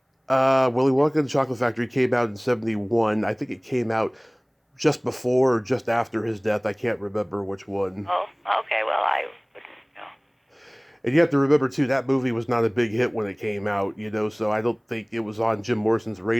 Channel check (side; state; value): both; identical; correlation 1.00